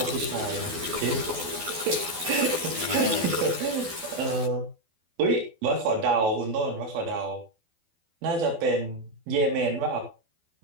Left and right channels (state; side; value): late; left; 12 ms